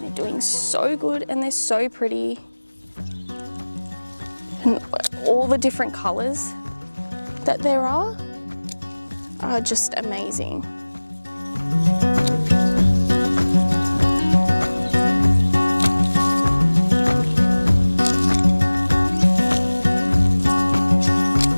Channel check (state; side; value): inverted; both; correlation -1.00